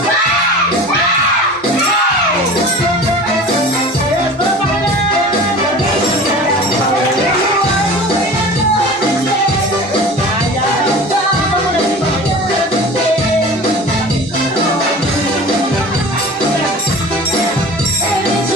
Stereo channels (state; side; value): normal; both; correlation 0.38